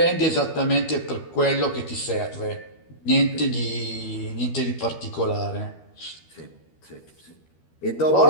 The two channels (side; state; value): right; late; 12 ms